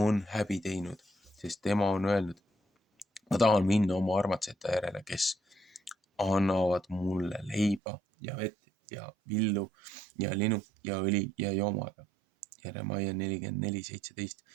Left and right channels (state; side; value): drops out; left; at 7.8 s